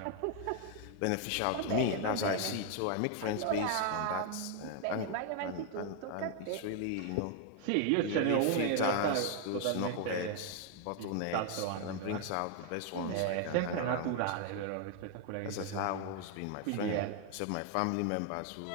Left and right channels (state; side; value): different; both; correlation 0.00